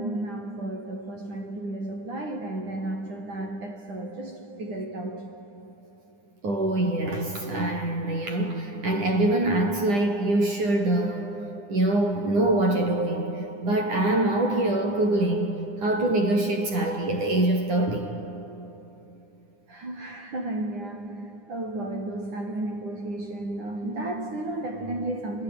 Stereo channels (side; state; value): left; late; 9.9 ms